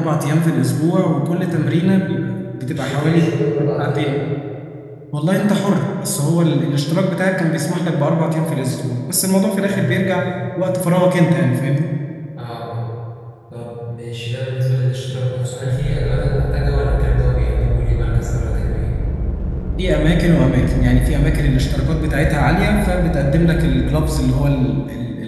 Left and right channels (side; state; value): both; identical; correlation 1.00